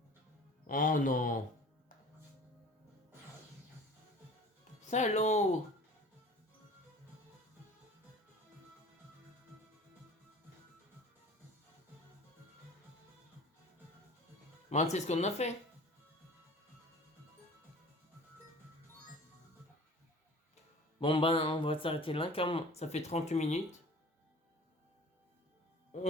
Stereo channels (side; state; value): both; normal; correlation 0.44